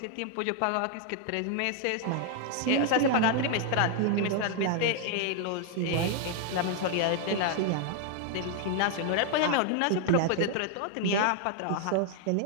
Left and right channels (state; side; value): different; both; correlation 0.00